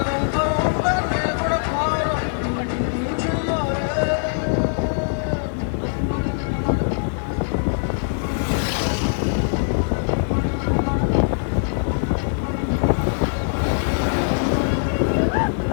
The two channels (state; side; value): silent; right; digital silence